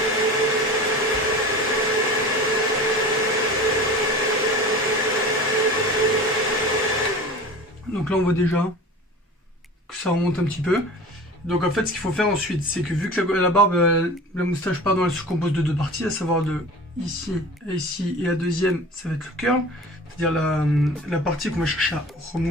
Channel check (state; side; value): normal; both; correlation 0.37